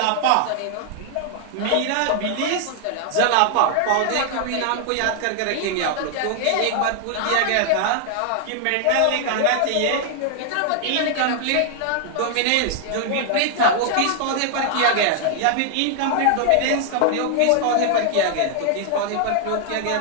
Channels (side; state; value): both; different; correlation 0.00